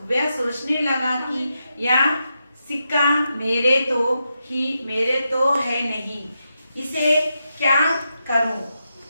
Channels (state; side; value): inverted; both; correlation -0.85